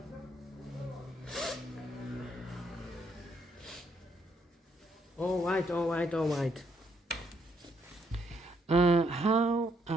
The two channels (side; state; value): both; normal; correlation 0.73